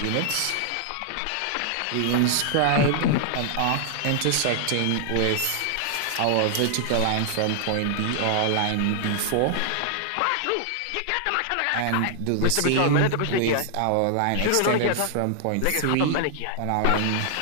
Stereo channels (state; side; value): different; both; correlation 0.00